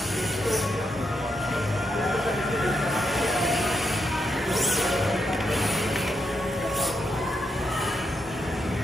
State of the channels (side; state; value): both; normal; correlation 0.81